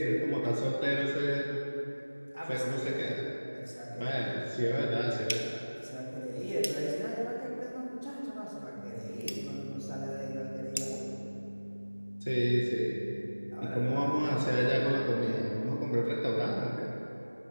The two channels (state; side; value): inverted; both; correlation -1.00